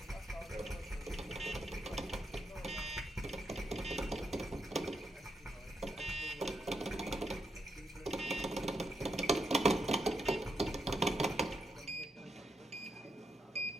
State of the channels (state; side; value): normal; both; correlation 0.82